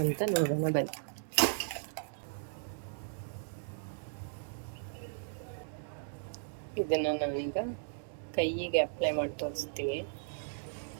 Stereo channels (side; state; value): left; silent; digital silence